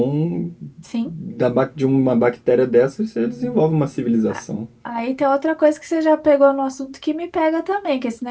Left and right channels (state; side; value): identical; both; correlation 1.00